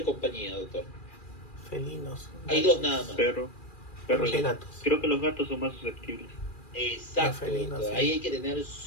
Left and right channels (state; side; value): late; right; 2.4 ms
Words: compañía, doctor? felinos. Hay dos nada más. Perro. Perros Perro. y gatos. Creo que los gatos son más susceptibles. Exacto, Los felinos, doctor. sí. Ahí hay que tener